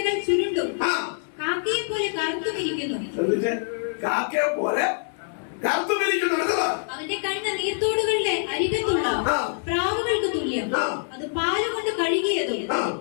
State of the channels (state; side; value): silent; right; digital silence